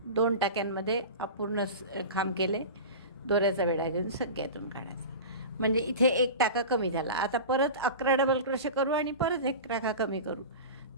2 टाक्यांमध्ये अपूर्ण खांब केले, दोऱ्याचा वेढा घेऊन सगळ्यातून काढायचा. म्हणजे इथे एक टाका कमी झाला. आता परत 11 डबल क्रोशे करू आणि परत एक टाका कमी करू.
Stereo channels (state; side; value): inverted; both; correlation -0.30